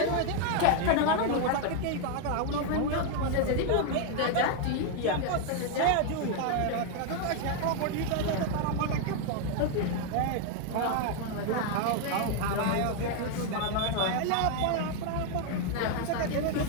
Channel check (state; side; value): different; both; correlation 0.01